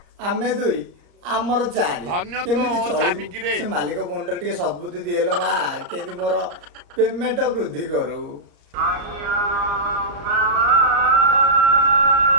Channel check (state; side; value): late; left; 34 ms